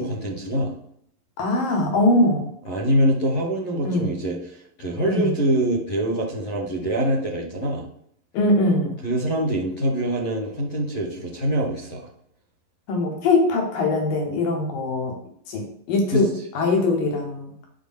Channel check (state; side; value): late; right; 11 ms